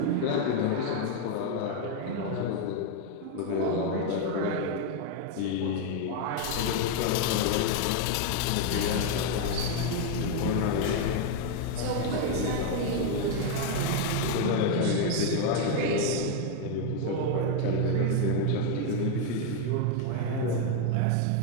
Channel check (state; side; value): different; both; correlation 0.01